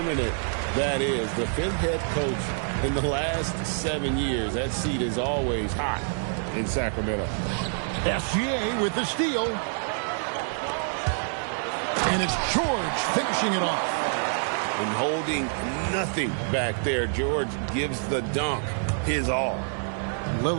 that is. The fifth head coach in the last 7 years. That seat is always hot in Sacramento. SGA with the steal. And it's George finishing it off. And holding nothing back there. George gives the dunk his all.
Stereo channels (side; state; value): left; silent; 60 dB below the other